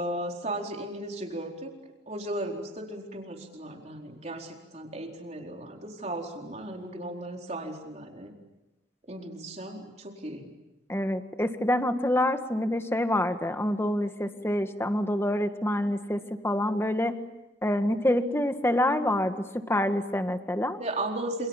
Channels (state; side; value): normal; both; correlation 0.73